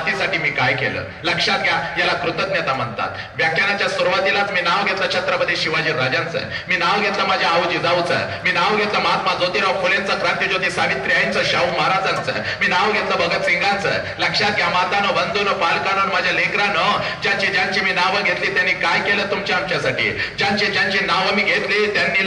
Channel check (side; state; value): both; identical; correlation 1.00